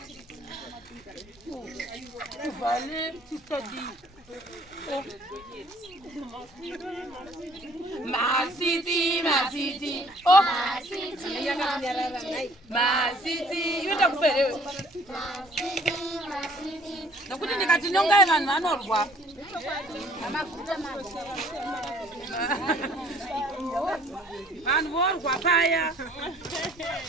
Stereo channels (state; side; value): normal; both; correlation 0.57